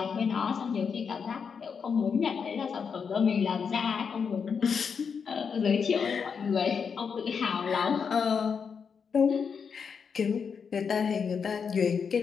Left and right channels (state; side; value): quieter; right; 6.2 dB